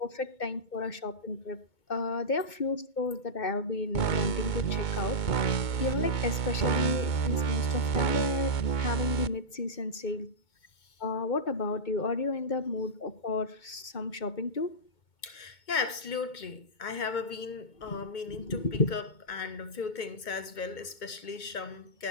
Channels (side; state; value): right; late; 2.2 ms